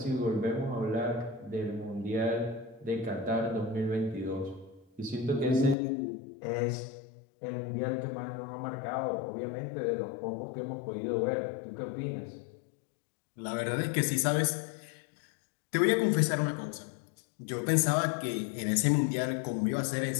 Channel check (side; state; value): right; drops out; at 5.8 s